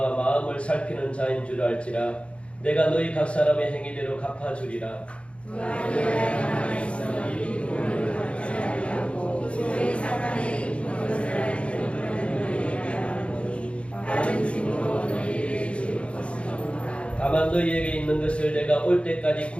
마음을 살피는 자인 줄 알지라. 내가 너희 각 사람의 행위대로 갚아주리라. 두아디라에 남아있어 이 돈을 받지 아니하고 소위 사탄의 깊은 것을 알지는 너희에게 하노니 다른 짐으로 너희를 줄 것이니라. 다만 너희에게 있는 것을 내가 올 때까지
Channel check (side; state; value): right; late; 0.060 ms